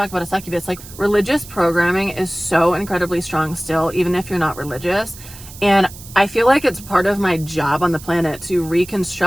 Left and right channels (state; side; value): noise; right; hiss, 17 dB below the sound